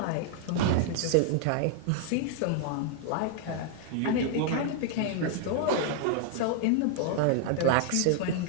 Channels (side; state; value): both; different; correlation 0.00